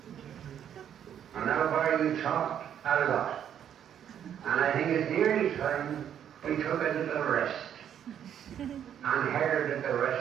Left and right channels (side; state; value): left; quieter; 9.4 dB